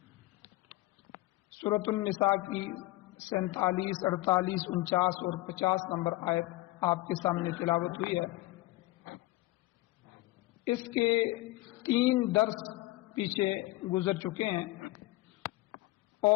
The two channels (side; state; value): right; quieter; 19.3 dB